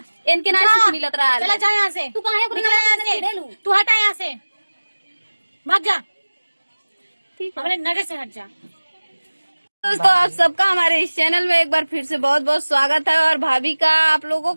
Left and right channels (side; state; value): both; inverted; correlation -1.00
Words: ना सुख मिलत रहा। चला जा यहाँ से। तू काहे को निकल यहाँ से। तू हटा यहाँ से, भाग जा। हमारे नजर से हट जा। दोस्तों, आप सबका हमारे इस चैनल में एक बार फिर से बहुत बहुत स्वागत है। और भाभी का आप लोगों